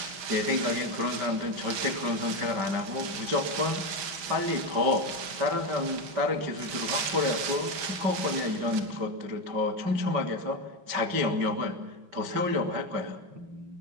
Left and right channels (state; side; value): late; left; 6.2 ms